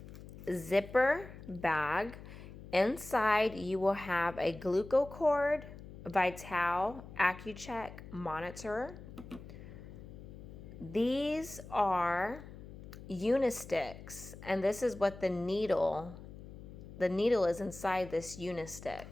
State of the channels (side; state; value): left; noise; hum, 14 dB below the sound